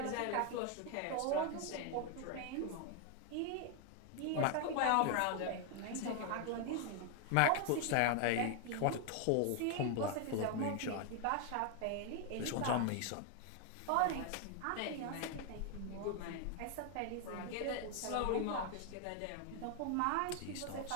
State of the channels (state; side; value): different; both; correlation 0.00